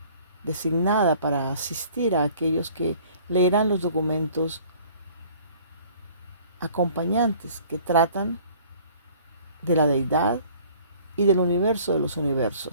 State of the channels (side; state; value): both; inverted; correlation -0.52